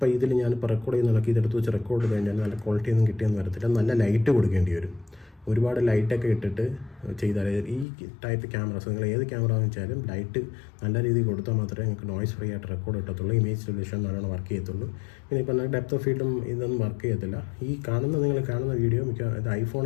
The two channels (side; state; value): right; drops out; at 7.9 s